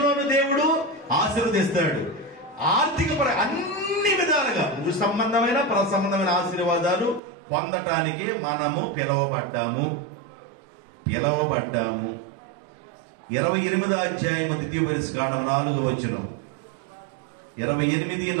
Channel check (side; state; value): left; drops out; at 7.2 s